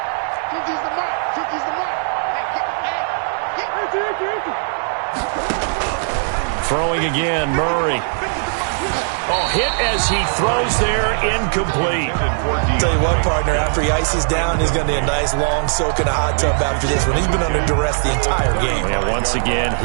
Throwing again, Murray. Oh, hit as he throws there, incomplete. Tell you what, partner, after he ices down, he's going to need a nice long soak in a hot tub after this one. He's been under duress the entire game. Yeah, once again,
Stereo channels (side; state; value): left; silent; 61 dB below the other